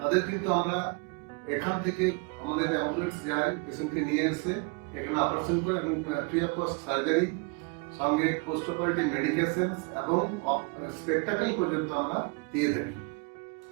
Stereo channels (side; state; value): left; quieter; 31.7 dB